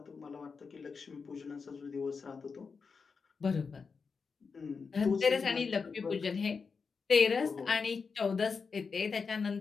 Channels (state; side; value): quieter; right; 5.2 dB